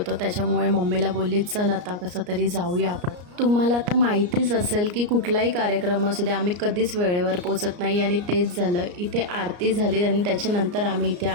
त्याच्यामुळे मम्मीला बोलली, चल आता कसं तरी जाऊया आपण. तुम्हाला आता माहितीच असेल की कुठलाही कार्यक्रम असू दे, आम्ही कधीच वेळेवर पोचत नाही आणि तेच झालं. इथे आरती झाली आणि त्याच्यानंतर आम्ही इथे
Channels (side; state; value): left; late; 34 ms